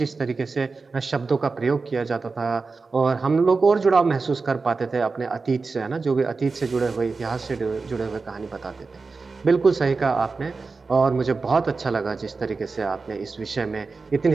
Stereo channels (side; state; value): left; quieter; 4.2 dB